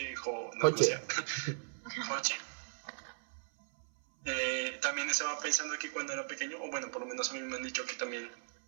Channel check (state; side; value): silent; left; 53 dB below the other